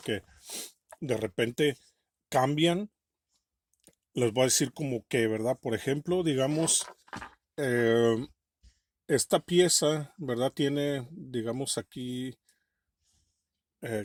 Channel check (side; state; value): both; identical; correlation 1.00